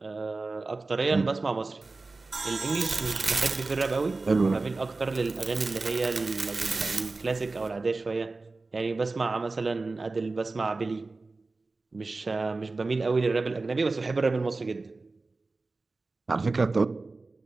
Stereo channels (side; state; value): left; quieter; 3.6 dB